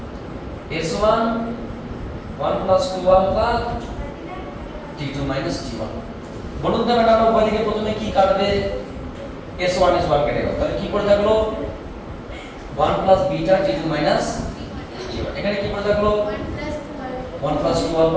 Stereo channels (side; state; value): both; identical; correlation 1.00